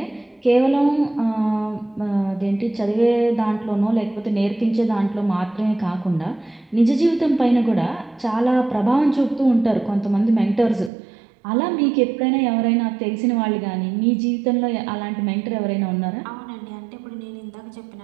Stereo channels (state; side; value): drops out; left; at 10.9 s